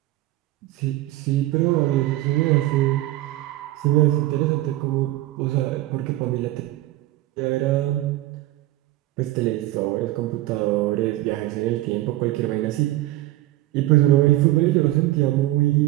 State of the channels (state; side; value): quieter; left; 16.7 dB